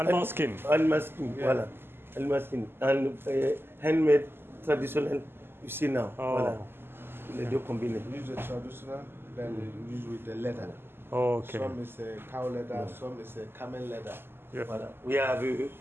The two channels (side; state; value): left; late; 0.11 ms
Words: skin. Animal skin, voilà. Animal skin. And handmade, traditional, you see now. Voilà. Les deux combinés. We use the traditional, then we use with the leather. Oh, okay. Some is cow leather, some is camel leather. Yeah. Voilà. We have